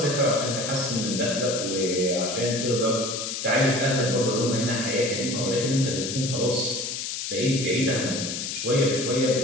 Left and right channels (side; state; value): left; noise; hiss, 4 dB below the sound